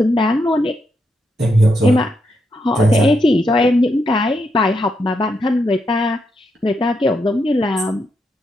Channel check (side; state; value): both; normal; correlation 0.81